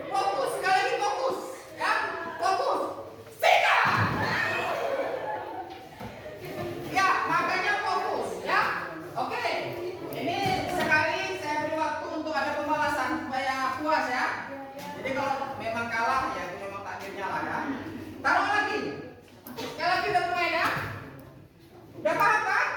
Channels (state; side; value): identical; both; correlation 1.00